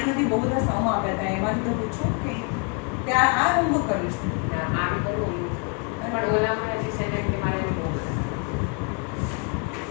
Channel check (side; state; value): right; quieter; 34.7 dB